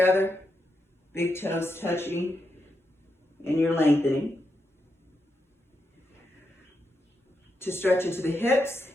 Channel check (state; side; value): normal; both; correlation 0.85